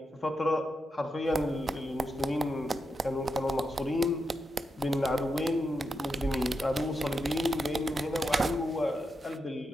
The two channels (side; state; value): both; normal; correlation 0.86